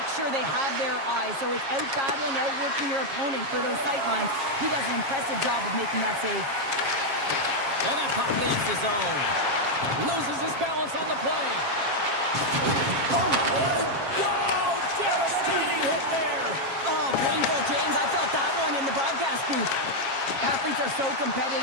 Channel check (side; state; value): left; late; 7.4 ms